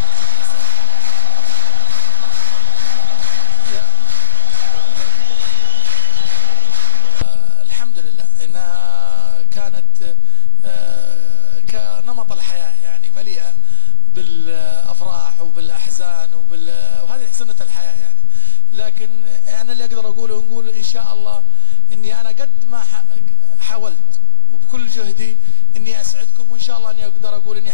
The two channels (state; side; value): inverted; both; correlation -0.56